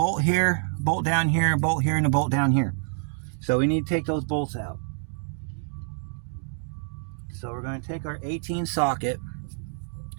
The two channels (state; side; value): silent; left; 59 dB below the other